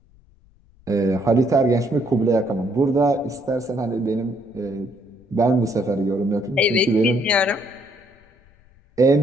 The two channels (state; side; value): noise; left; rumble, 30 dB below the sound